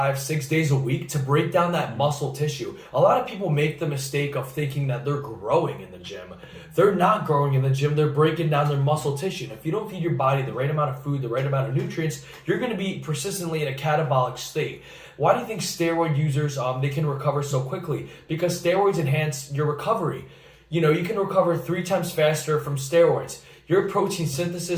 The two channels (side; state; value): both; identical; correlation 1.00